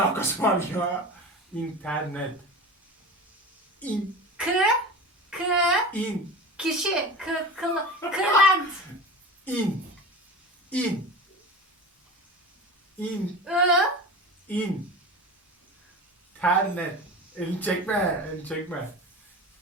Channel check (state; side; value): normal; both; correlation 0.31